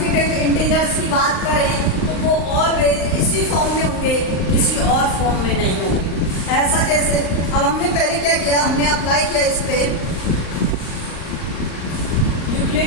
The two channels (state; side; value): late; right; 38 ms